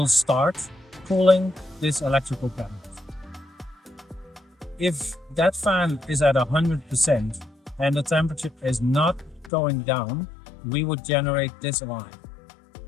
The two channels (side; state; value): right; drops out; at 9.5 s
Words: start cooling this electrical cabinet. If that fan is at 100% and the temperature is not going down, we would generate this alarm,